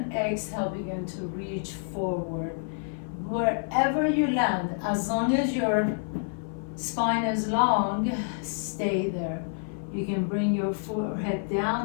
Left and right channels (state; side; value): silent; right; 57 dB below the other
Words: exhale, begin to reach forward. Wherever you land, as long as your spine is long, stay there. You can bring your forehead